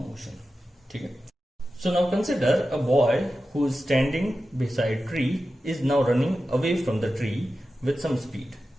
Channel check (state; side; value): normal; both; correlation 0.93